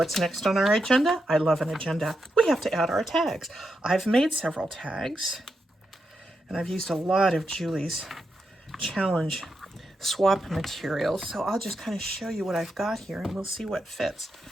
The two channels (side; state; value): both; normal; correlation 0.85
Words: next on our agenda? I love an agenda. We have to add our tags. I've made several tags, and I've used a lot of Julie's challenge swap materials, so I'll just kind of show you what I've got here, and we'll see what fits.